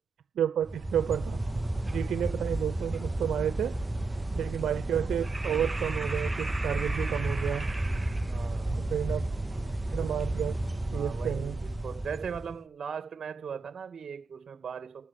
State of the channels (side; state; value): left; quieter; 4.4 dB